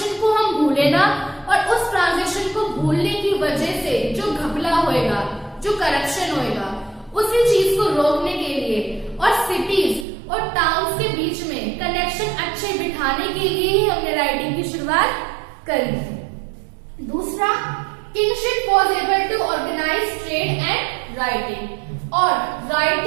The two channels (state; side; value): drops out; left; at 10.1 s